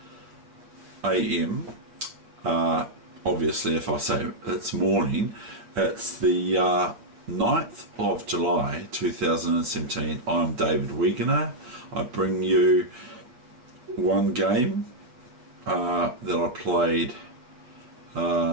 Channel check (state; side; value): late; left; 8.3 ms